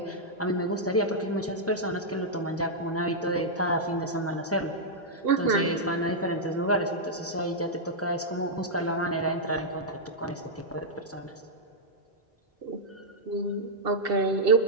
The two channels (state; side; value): normal; both; correlation -0.06